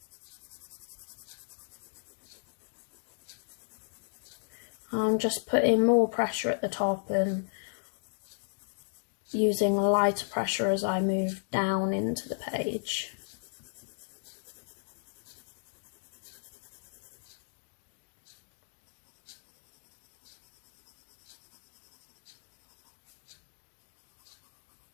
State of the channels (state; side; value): silent; right; digital silence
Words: I'm just putting more pressure at the top and using lighter pressure as I move down into the page.